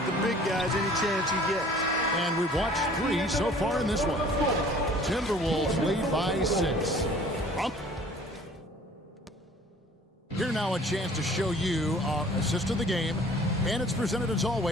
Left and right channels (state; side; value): normal; both; correlation 0.51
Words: the big guys any chance he gets. And we've watched 3 so far in this one. Timberwolves lead by 6. Here now a chance to show you our assist of the game. And it's presented as